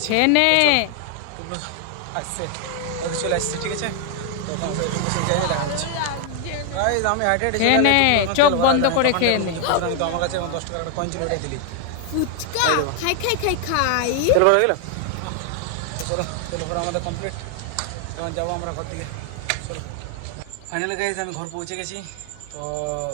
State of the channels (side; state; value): both; different; correlation 0.00